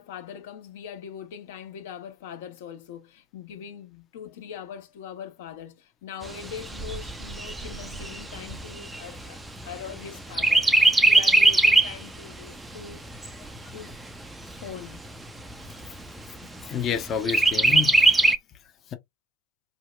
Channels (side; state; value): both; normal; correlation 0.76